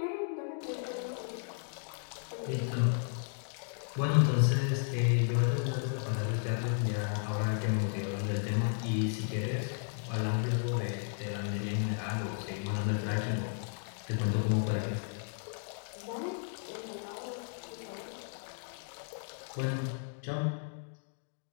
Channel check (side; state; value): right; silent; digital silence